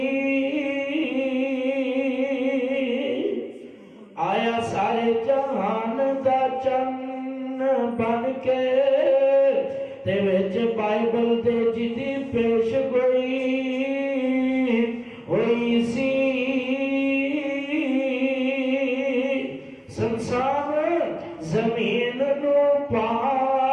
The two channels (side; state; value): both; identical; correlation 1.00